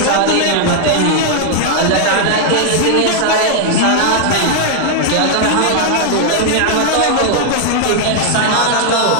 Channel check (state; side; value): different; both; correlation -0.01